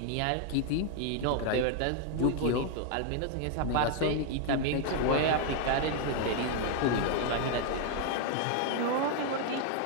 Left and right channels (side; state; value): both; different; correlation 0.00